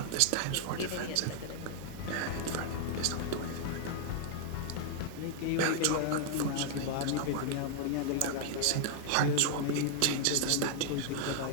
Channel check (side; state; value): both; different; correlation 0.00